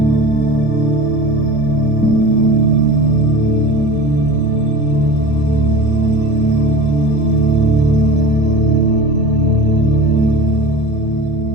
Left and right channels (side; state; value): right; noise; hum, 20 dB below the sound